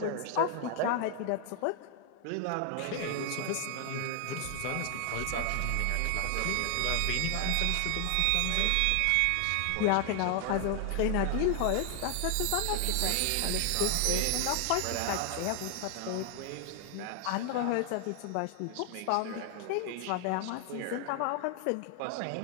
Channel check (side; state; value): both; different; correlation 0.00